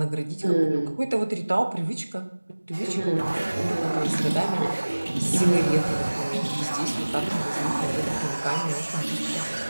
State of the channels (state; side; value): inverted; both; correlation -1.00